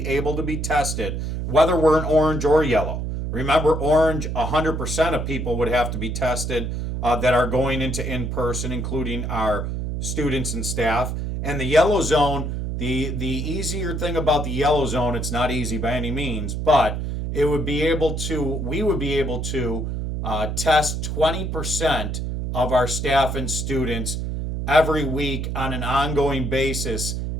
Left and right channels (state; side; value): noise; right; hum, 3 dB below the sound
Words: able to be tested, whether we're in orange or yellow. Remember, orange, 100% of people would have to be tested that are going into in-person, including our students and staff. And the yellow zone, the easier thing about the yellow zone, it's not easy by any means, but we would be able to test 20% of our staff and students every week on an ongoing basis,